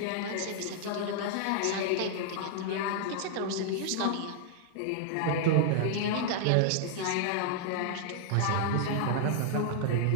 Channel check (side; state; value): both; different; correlation 0.00